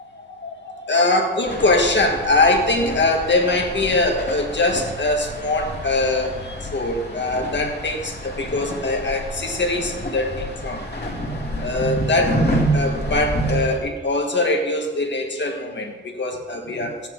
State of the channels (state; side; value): normal; both; correlation 0.09